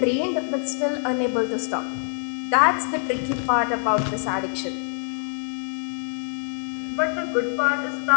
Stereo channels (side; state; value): right; silent; 59 dB below the other